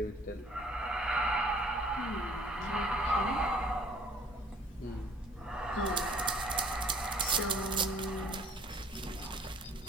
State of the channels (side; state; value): both; normal; correlation 0.54